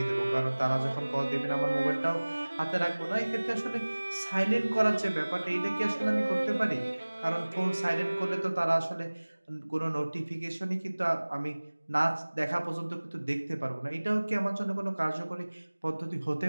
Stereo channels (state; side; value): inverted; both; correlation -1.00